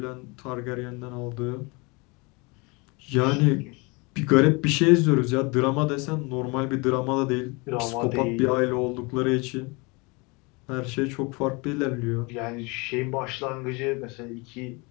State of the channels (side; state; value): right; quieter; 28.1 dB